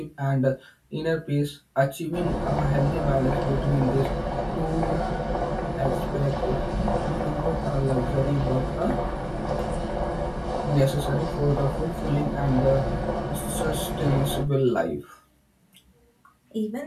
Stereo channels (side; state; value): both; identical; correlation 1.00